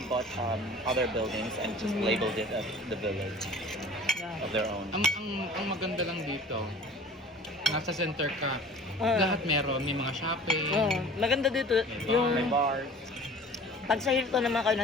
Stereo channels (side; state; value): both; normal; correlation 0.44